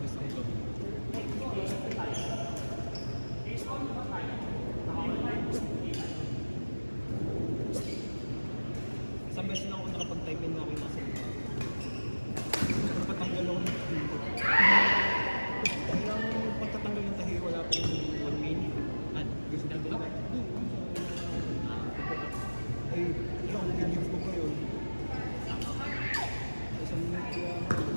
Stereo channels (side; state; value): both; inverted; correlation -1.00